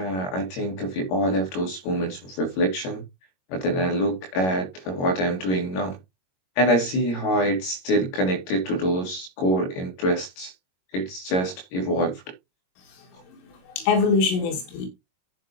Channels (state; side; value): late; right; 22 ms